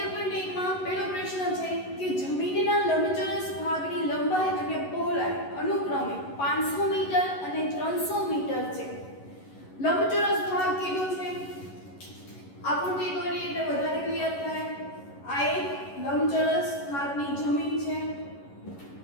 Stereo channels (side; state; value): right; late; 11 ms